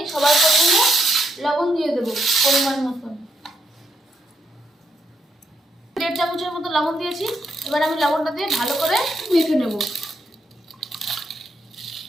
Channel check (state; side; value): normal; both; correlation 0.78